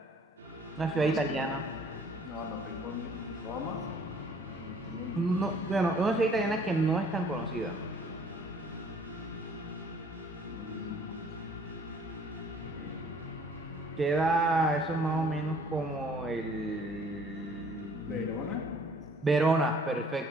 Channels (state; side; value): normal; both; correlation 0.56